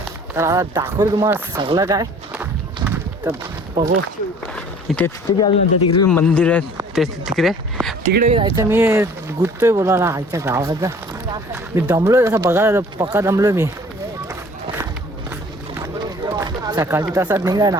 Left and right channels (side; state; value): both; normal; correlation 0.51